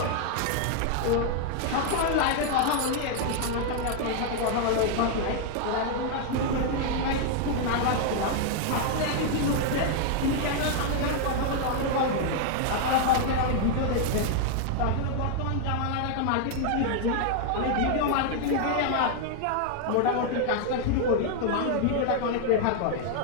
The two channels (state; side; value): different; both; correlation 0.00